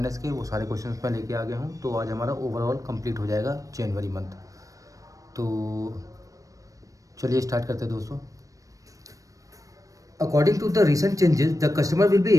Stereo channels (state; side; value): late; left; 0.16 ms